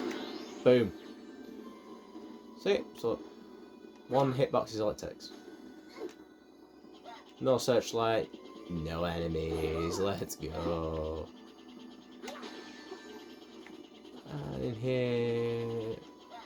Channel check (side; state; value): both; identical; correlation 1.00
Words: Boom. See? So, one hitbox is all it takes. No searchlight, no enemies. Let's go. And in here...